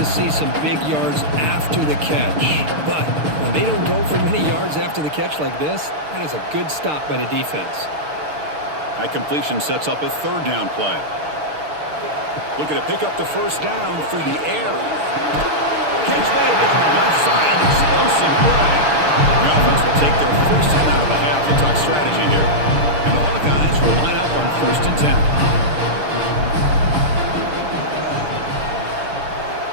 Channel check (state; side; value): late; left; 6.6 ms